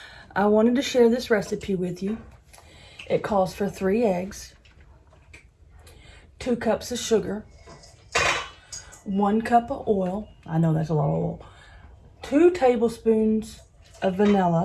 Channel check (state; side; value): identical; both; correlation 1.00